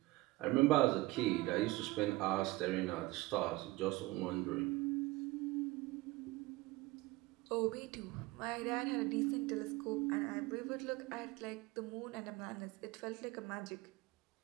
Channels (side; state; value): left; quieter; 20.0 dB